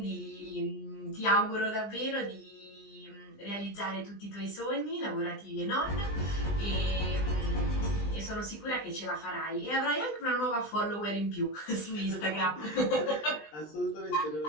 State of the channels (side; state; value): right; late; 20 ms